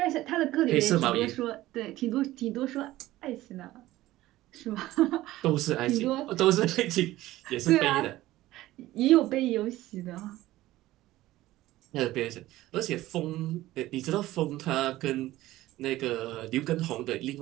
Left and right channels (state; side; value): quieter; left; 16.3 dB